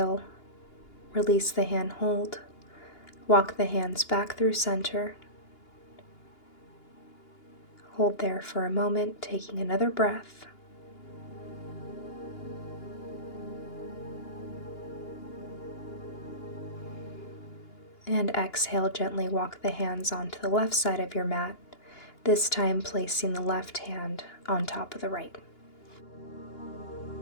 release the hand hold. Walk the hands back through center. Hold there for a moment, taking another breath. And exhale, gently walk the hands onto the left side of your mat, this time placing the left hand on top of the right.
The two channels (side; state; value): right; late; 2.9 ms